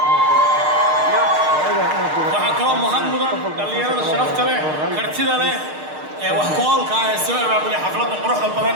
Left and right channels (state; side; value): late; left; 6.5 ms